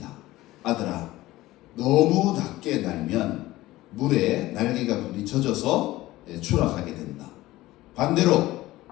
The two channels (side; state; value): right; quieter; 17.4 dB